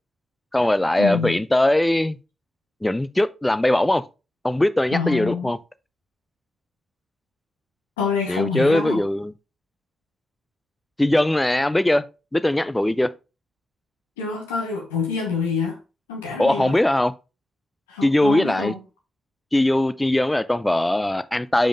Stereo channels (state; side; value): normal; both; correlation 0.93